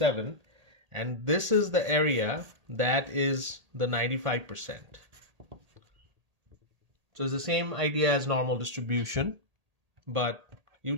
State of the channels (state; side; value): late; left; 1.8 ms